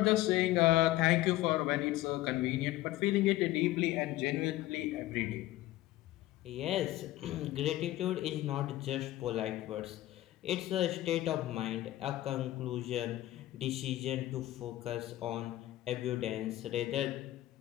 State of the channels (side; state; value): right; quieter; 15.9 dB